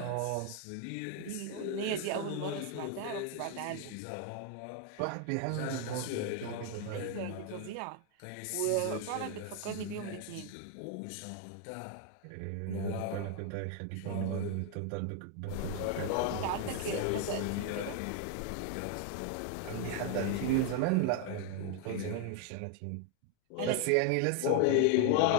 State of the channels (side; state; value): both; different; correlation 0.01